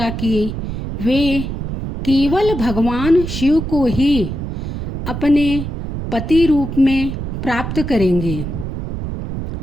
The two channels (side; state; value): right; noise; rumble, 6 dB below the sound